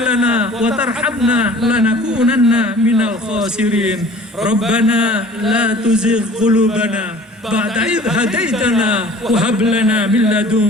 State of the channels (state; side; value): normal; both; correlation 0.48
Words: wa tarhamna lanakunanna minal khasirin. Rabbana la tuzigh qulubana بعد إذ هديتنا وهب لنا من